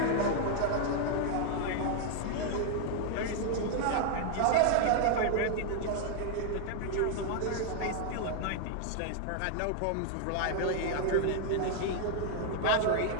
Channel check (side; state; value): both; different; correlation 0.00